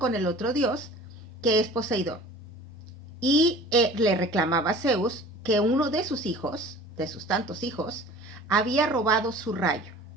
el otro dios, que es Poseidón. Y le reclamaba a Zeus que uno de sus hijos, de sus tantos hijos, había robado su rayo.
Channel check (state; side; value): normal; both; correlation 0.44